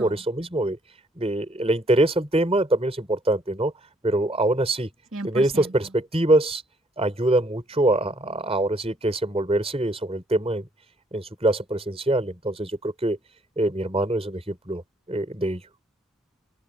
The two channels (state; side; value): normal; both; correlation 0.66